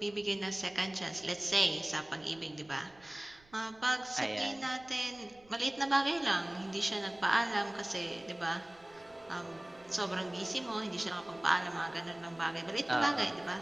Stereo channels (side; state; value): right; noise; rumble, 28 dB below the sound